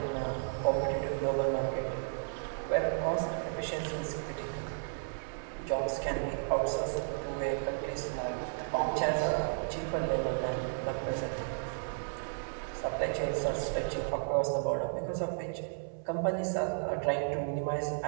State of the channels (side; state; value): left; silent; 55 dB below the other